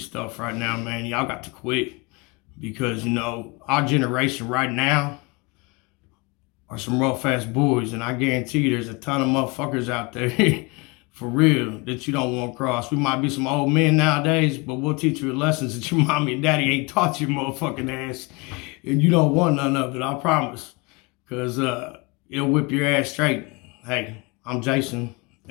stuff right now, man, y'all got to quit. Because, you know, our generation right now are some rough ass boys, and I guarantee you there's a ton of motherfuckers out there for real that you don't want to cross. We might be some old men nowadays, but we'll teach you lessons that your mommy and daddy ain't taught your motherfucking ass, and you don't want none of it, I promise. Because it'll whip your ass straight. Hey, I'm Jason,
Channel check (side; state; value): right; quieter; 27.2 dB